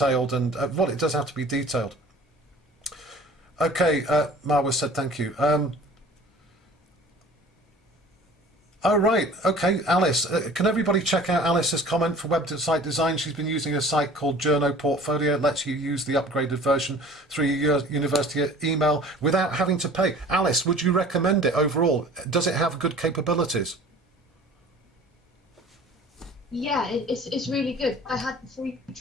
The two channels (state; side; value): normal; both; correlation 0.46